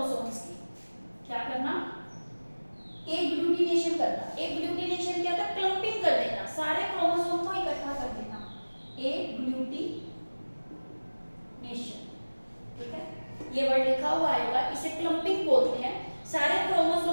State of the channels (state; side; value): inverted; both; correlation -1.00